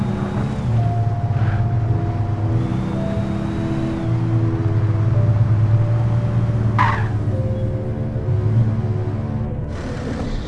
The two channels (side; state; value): both; identical; correlation 1.00